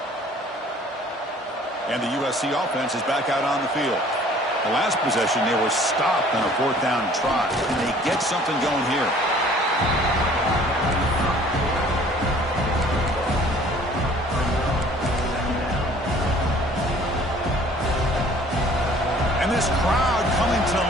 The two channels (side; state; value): both; normal; correlation 0.53